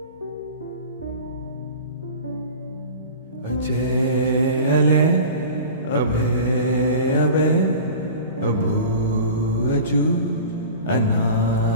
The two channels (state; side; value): inverted; both; correlation -0.37